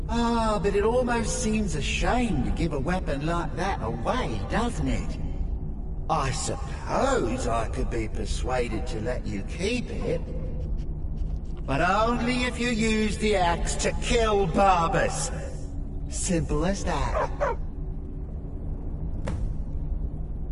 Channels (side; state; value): both; identical; correlation 1.00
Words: Ah, but it almost seems a shame to give a weapon like that away, doesn't it? I suppose I could be persuaded to let you keep it. But only if you use the axe to kill Barbas. Simple as that.